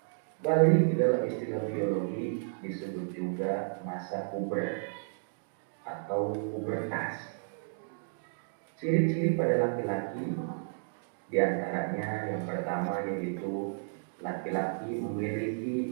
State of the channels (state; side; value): silent; left; digital silence